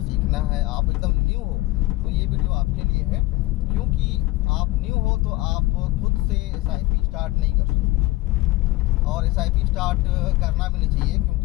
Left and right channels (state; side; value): quieter; right; 19.8 dB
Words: है, आप एकदम न्यू हो, तो ये वीडियो आपके लिए है। क्योंकि आप न्यू हो तो आप खुद से SIP स्टार्ट नहीं कर सकते और SIP स्टार्ट करना भी नहीं चाहिए,